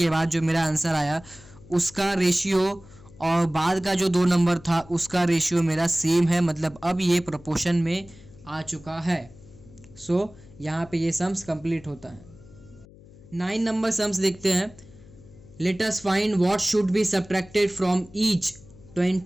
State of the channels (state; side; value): noise; left; hum, 22 dB below the sound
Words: बाद जो मेरा आंसर आया उसका रेशियो और बाद का जो 2 नंबर था उसका रेशियो मेरा सेम है, मतलब अब ये प्रोपोर्शन में आ चुका है। सो यहाँ पे ये सम्स कंप्लीट होता है। 9 नंबर सम्स देखते हैं। Let us find what should be subtracted from each